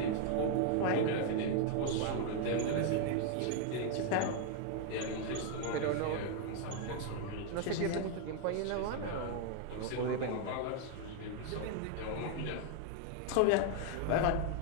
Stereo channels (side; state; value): both; different; correlation 0.00